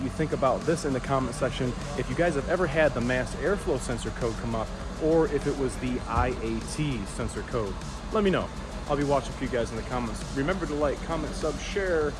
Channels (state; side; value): identical; both; correlation 1.00